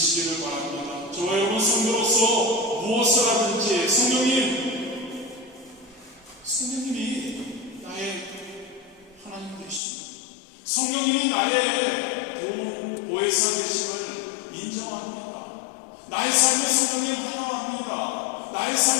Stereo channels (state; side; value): drops out; right; at 9.8 s